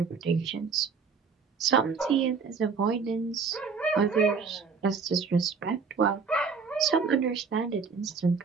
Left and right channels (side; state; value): left; quieter; 5.4 dB